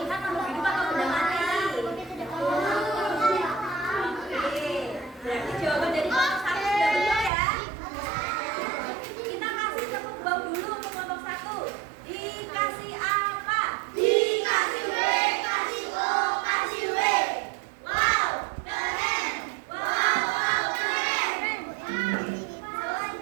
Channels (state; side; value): drops out; left; at 7.3 s